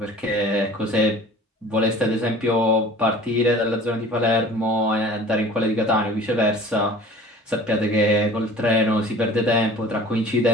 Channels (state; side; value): normal; both; correlation 0.45